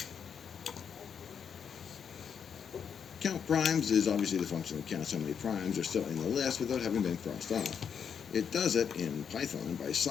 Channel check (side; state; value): right; quieter; 7.2 dB